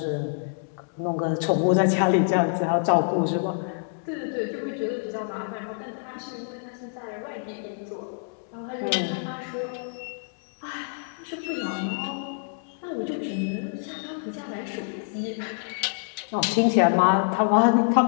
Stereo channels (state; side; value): silent; right; digital silence